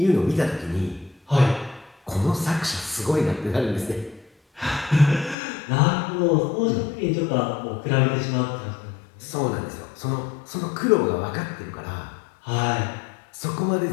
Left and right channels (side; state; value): right; drops out; at 5.4 s